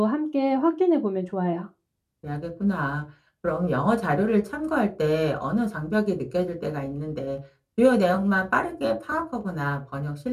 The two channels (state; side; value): identical; both; correlation 1.00